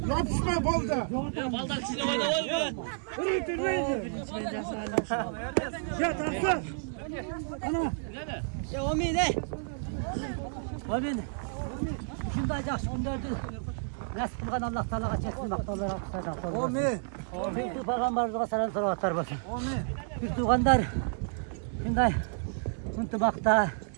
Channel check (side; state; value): left; silent; 57 dB below the other